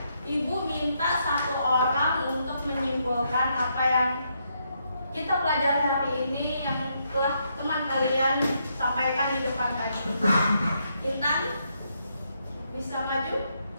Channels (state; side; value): inverted; both; correlation -0.77